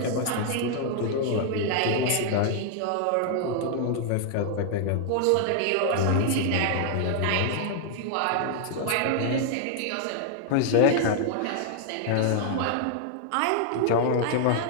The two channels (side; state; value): both; different; correlation 0.00